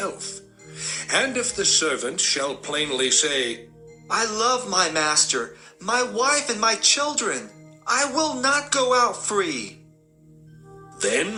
And if the servant shall plainly say, I love my master, my wife and my children, I will not go out free, then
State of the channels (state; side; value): identical; both; correlation 1.00